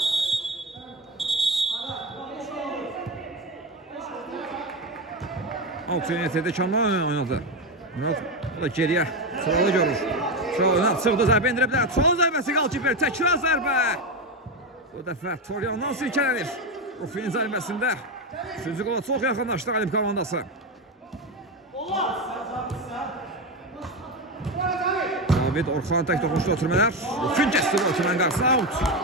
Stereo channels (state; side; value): normal; both; correlation 0.14